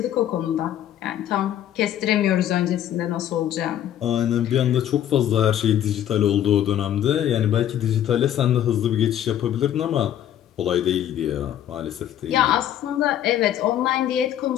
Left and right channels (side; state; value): right; quieter; 11.1 dB